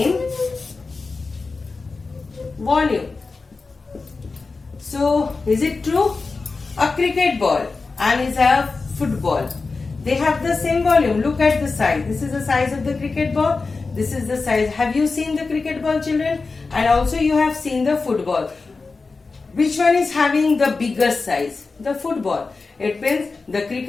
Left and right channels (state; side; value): quieter; right; 4.1 dB